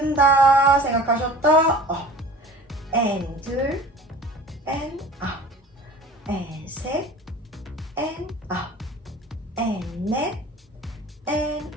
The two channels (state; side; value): normal; both; correlation 0.42